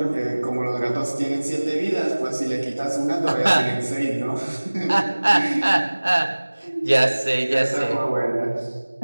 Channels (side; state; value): both; inverted; correlation -1.00